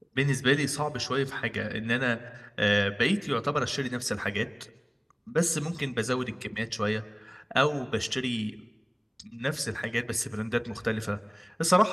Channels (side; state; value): both; identical; correlation 1.00